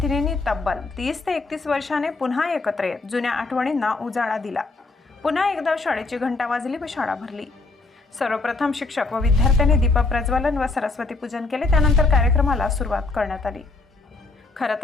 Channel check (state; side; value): quieter; right; 3.5 dB